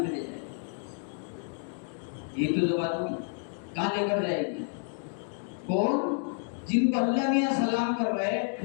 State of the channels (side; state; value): right; silent; 58 dB below the other